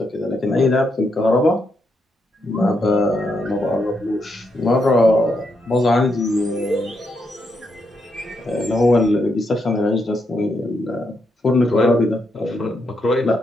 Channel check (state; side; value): normal; both; correlation 0.80